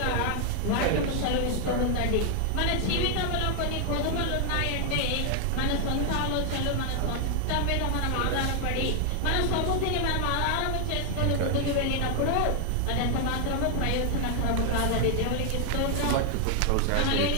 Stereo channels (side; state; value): both; different; correlation 0.00